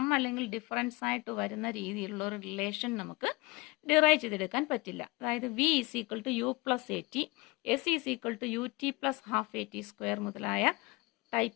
അല്ലെങ്കിൽ difference ആയിട്ട് വരുന്ന രീതിയിലുള്ള ഒരു റിലേഷൻ നമുക്ക് ഡിറൈവ് ചെയ്തെടുക്കാൻ പറ്റില്ല. അതായത് V is equal to U plus A T, S is equal to U T plus half A T square മുതലായ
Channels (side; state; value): right; quieter; 24.3 dB